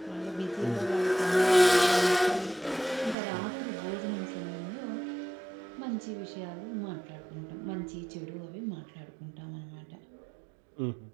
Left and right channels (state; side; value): drops out; left; at 3.2 s